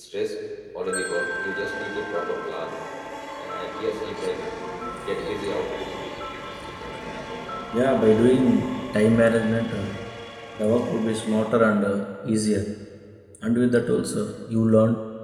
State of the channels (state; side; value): identical; both; correlation 1.00